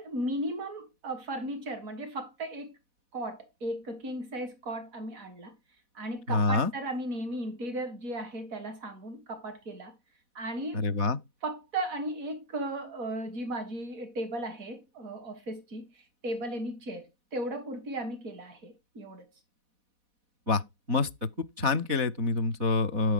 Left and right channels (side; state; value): left; late; 4.1 ms